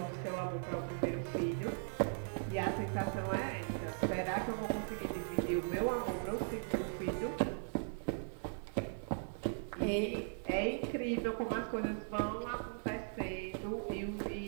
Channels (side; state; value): left; silent; digital silence